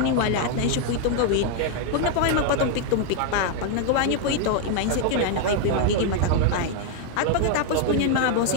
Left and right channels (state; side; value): different; both; correlation 0.00